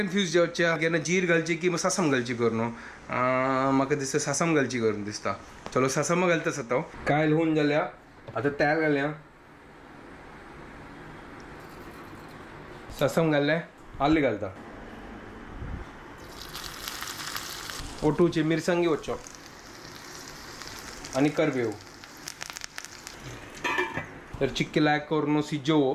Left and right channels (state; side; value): identical; both; correlation 1.00